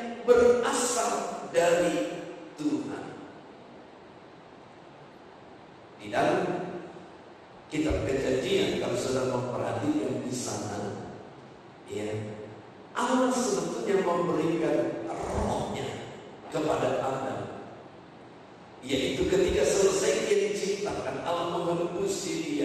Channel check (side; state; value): both; identical; correlation 1.00